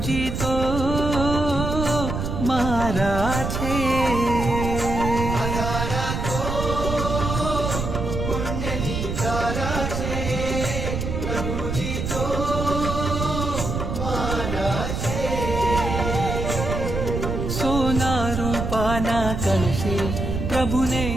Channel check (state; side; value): noise; right; rumble, 3 dB below the sound